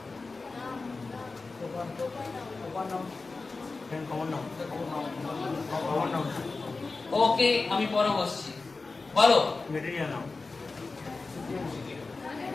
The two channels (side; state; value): right; quieter; 3.8 dB